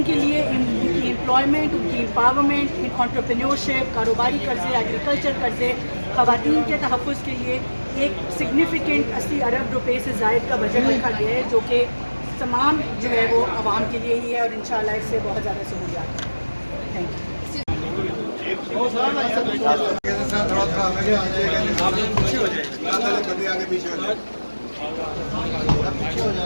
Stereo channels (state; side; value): inverted; both; correlation -1.00